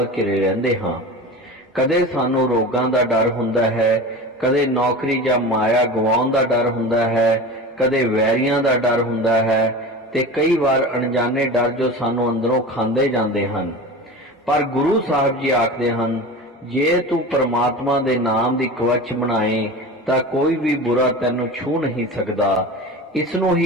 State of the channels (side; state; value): both; normal; correlation 0.31